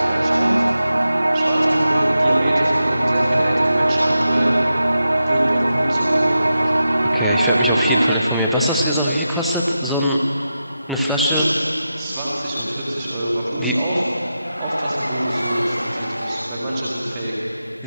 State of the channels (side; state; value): both; inverted; correlation -0.89